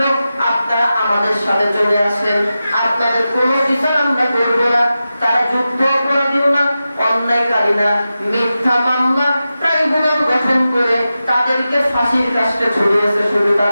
আপনারা আমাদের সাথে চলে আসেন, আপনাদের কোনো বিচার আমরা করব না। তারা যুদ্ধ অপরাধীও না, অন্যায়কারী না, মিথ্যা মামলা ট্রাইব্যুনাল গঠন করে তাদেরকে ফাঁসির কাস্টে ঝুলিয়েছে। শুধু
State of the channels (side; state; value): both; inverted; correlation -0.92